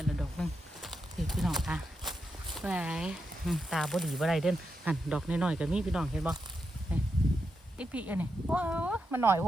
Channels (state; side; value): normal; both; correlation 0.86